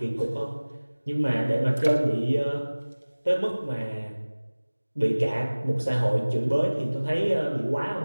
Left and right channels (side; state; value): both; inverted; correlation -1.00